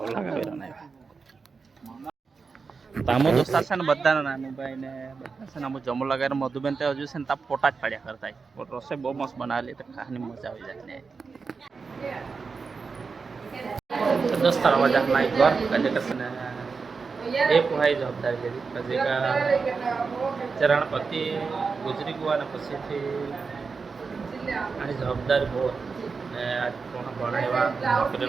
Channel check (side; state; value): left; quieter; 4.9 dB